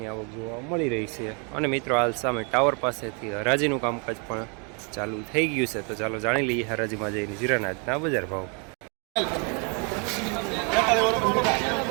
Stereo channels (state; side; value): quieter; left; 36.0 dB